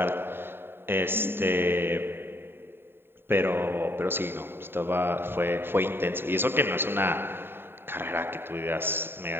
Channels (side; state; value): left; late; 0.11 ms